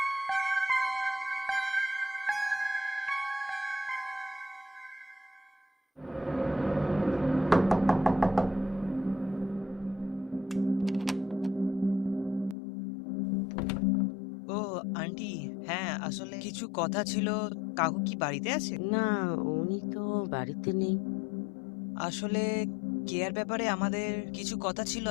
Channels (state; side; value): drops out; right; at 12.6 s